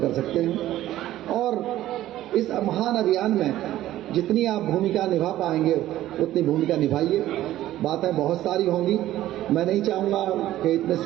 सकते हैं। और इस महान अभियान में जितनी आप भूमिका निभा पाएंगे उतनी भूमिका निभाइए। बातें बहुत सारी होंगी। मैं नहीं चाहूँगा कि इतने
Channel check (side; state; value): left; quieter; 14.1 dB